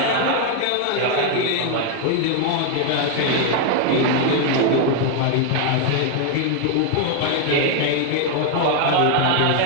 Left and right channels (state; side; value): different; both; correlation 0.00